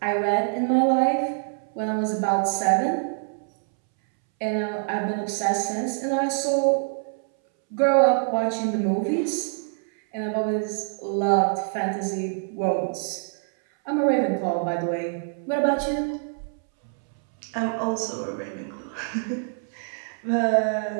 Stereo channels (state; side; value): silent; left; 61 dB below the other